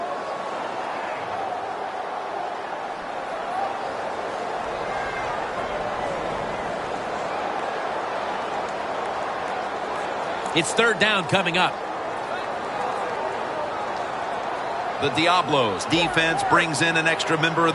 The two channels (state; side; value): identical; both; correlation 1.00